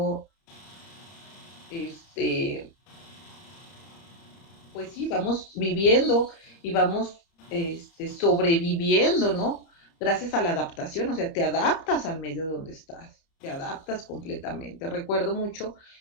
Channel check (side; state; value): right; late; 30 ms